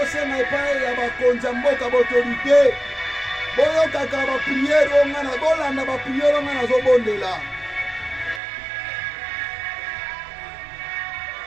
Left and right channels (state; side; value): drops out; left; at 8.4 s